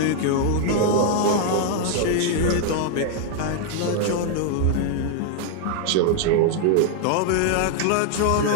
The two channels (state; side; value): different; both; correlation 0.00